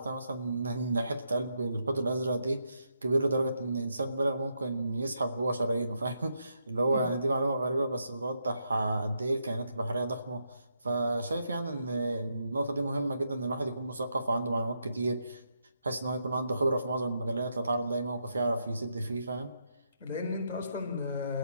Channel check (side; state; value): both; inverted; correlation -0.80